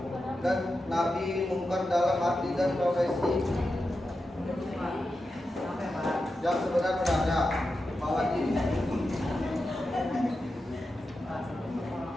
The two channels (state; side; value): normal; both; correlation 0.90